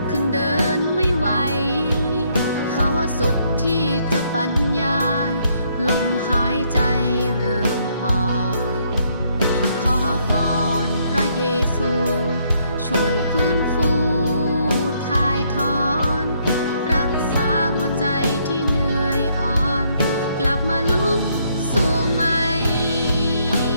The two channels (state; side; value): inverted; both; correlation -0.71